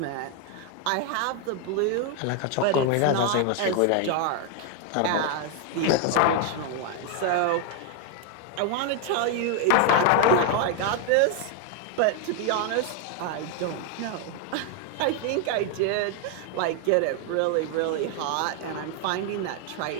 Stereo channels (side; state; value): both; different; correlation 0.01